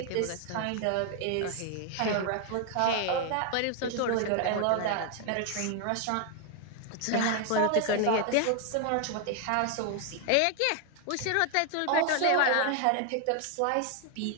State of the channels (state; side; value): different; both; correlation 0.01